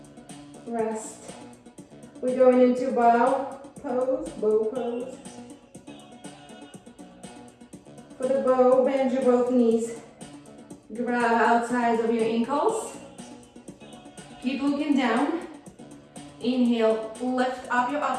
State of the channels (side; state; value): both; identical; correlation 1.00